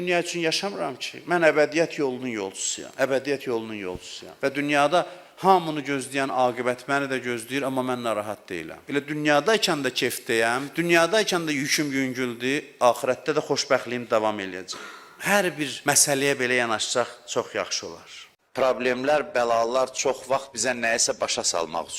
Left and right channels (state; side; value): identical; both; correlation 1.00